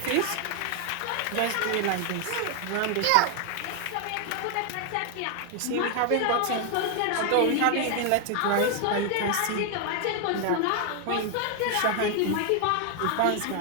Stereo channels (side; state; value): both; different; correlation 0.01